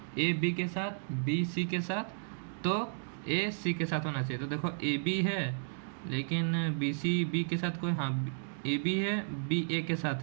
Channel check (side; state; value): left; silent; digital silence